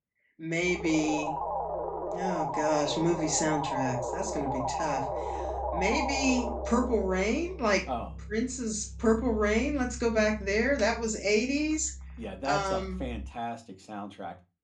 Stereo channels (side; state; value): both; identical; correlation 1.00